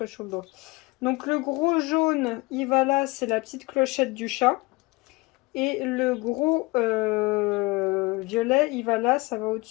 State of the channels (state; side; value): quieter; right; 23.6 dB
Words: sur le dos. Donc le gros jaune, il va là, c'est la petite clochette du chat. Et le gros violet, il va là, ça va